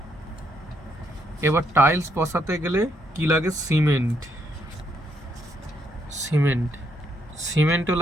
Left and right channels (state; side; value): normal; both; correlation 0.75